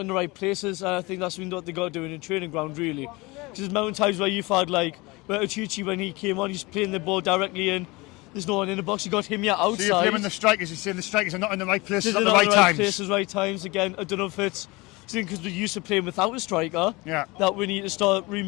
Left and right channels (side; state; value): right; quieter; 23.7 dB